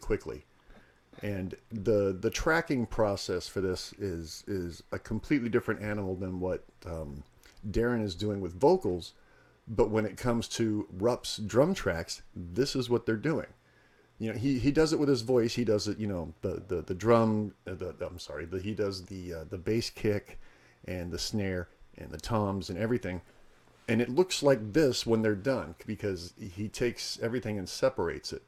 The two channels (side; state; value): both; identical; correlation 1.00